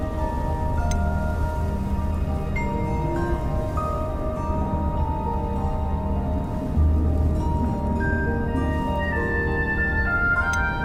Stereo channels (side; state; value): both; identical; correlation 1.00